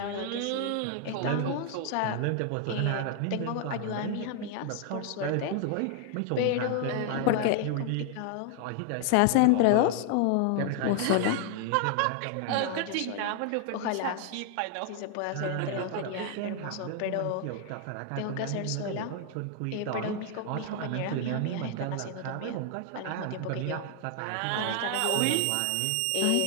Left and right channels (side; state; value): both; different; correlation 0.00